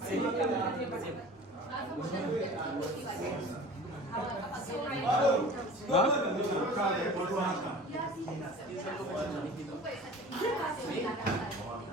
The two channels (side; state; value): both; normal; correlation 0.41